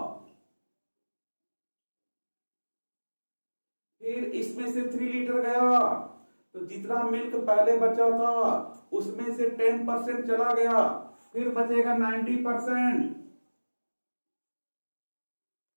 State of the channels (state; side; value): inverted; both; correlation -1.00